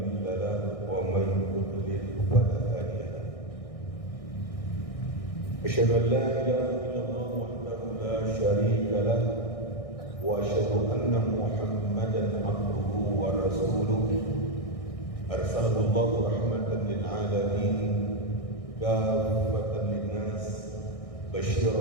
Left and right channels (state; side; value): late; right; 1.6 ms